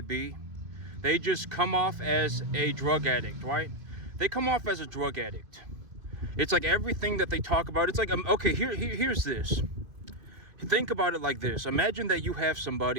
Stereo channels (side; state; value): left; late; 2.3 ms